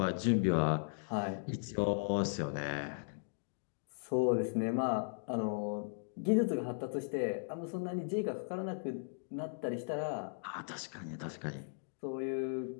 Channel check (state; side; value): silent; right; digital silence